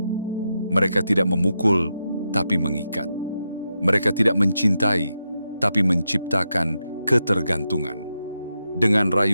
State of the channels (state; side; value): inverted; both; correlation -0.86